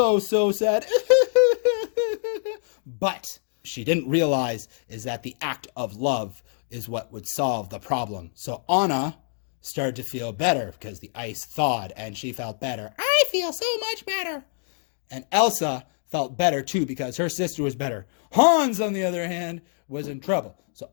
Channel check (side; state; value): right; silent; 61 dB below the other